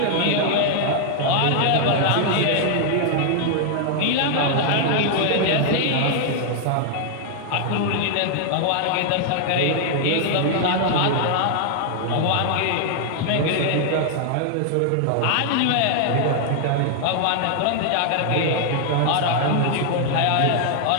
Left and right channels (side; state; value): both; different; correlation 0.00